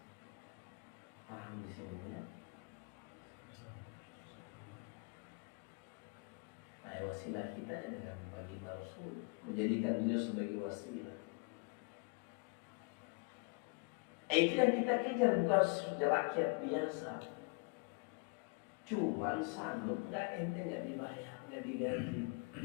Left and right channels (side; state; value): right; quieter; 32.1 dB